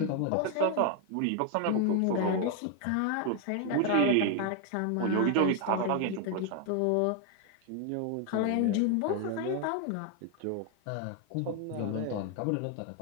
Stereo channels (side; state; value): both; different; correlation 0.01